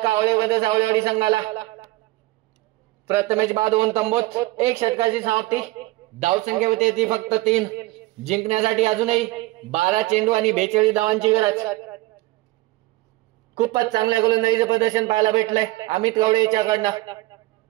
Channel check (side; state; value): left; quieter; 20.2 dB